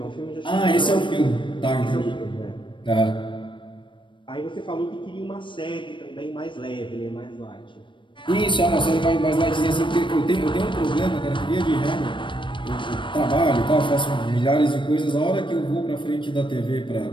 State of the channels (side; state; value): right; late; 0.24 ms